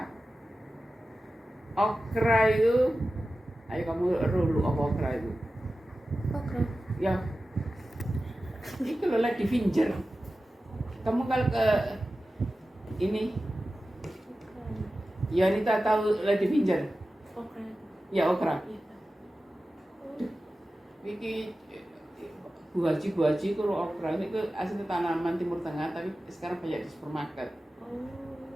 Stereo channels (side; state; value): both; normal; correlation 0.94